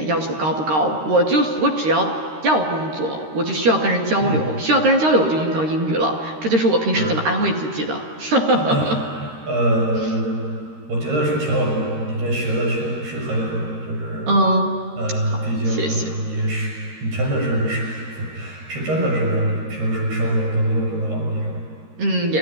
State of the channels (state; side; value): late; left; 13 ms